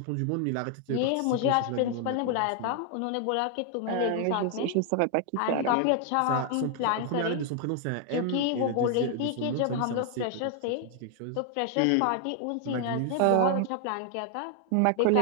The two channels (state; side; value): different; both; correlation 0.00